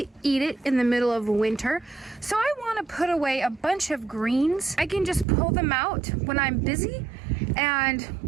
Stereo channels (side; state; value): left; drops out; at 5.2 s